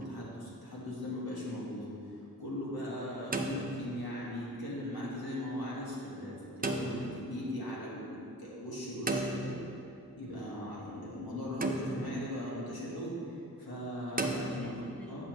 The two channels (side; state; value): both; normal; correlation 0.40